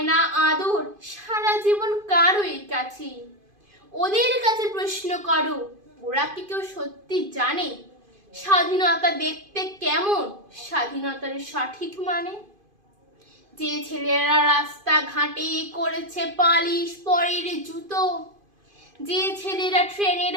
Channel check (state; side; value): late; left; 2.5 ms